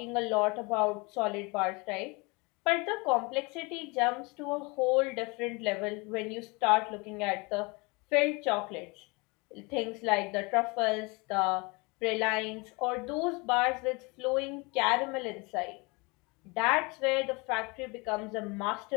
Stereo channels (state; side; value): quieter; right; 27.6 dB